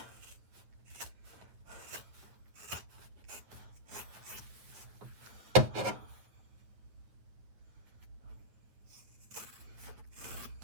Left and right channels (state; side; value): late; left; 9.2 ms